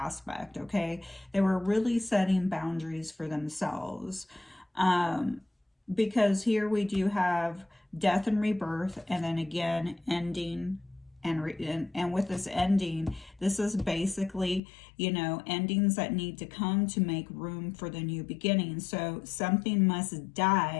okay? They were really setting boundaries for themselves. Because here we do have death and rebirth, and then again ending, and with this ending, this is basically, you know, endings that need to come to make room for the new beginning. So something must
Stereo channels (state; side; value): drops out; right; at 14.6 s